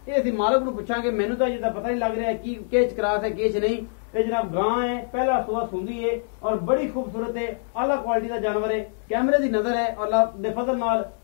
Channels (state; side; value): silent; right; digital silence